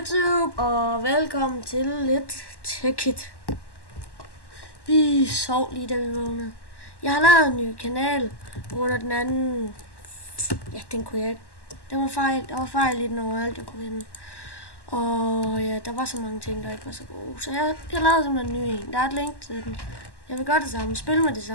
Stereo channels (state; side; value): late; right; 1.1 ms